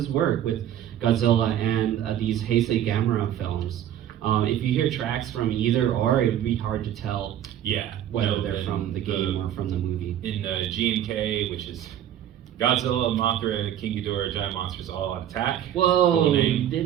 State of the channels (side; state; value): left; quieter; 11.1 dB